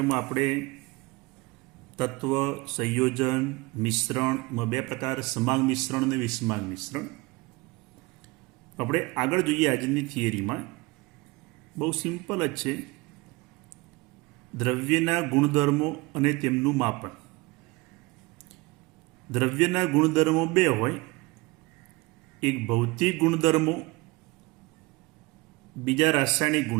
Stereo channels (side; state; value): left; quieter; 23.7 dB